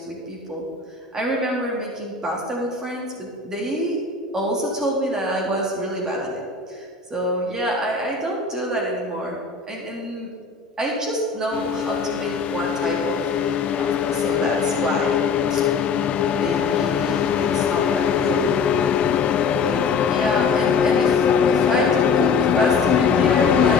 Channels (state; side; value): quieter; right; 4.8 dB